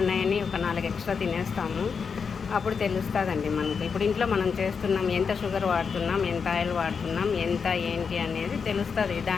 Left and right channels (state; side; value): quieter; right; 5.9 dB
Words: ఒక 4 ఎక్స్ట్రా తినేస్తాము. అప్పుడు తెలుస్తుందండి మనకు. ఇప్పుడు ఇంట్లో మనం చేస్తున్నాం, ఎంత షుగర్ వాడుతున్నాం, ఎంత ఆయిల్ వాడుతున్నాం, ఎంత ఏంటి అనేది తెలుస్తుంది.